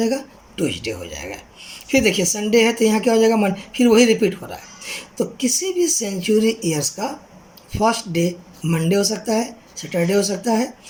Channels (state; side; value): identical; both; correlation 1.00